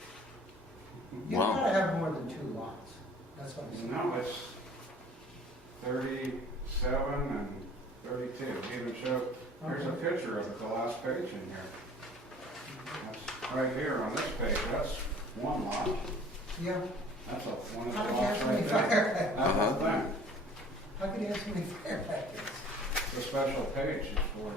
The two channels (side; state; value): both; normal; correlation 0.50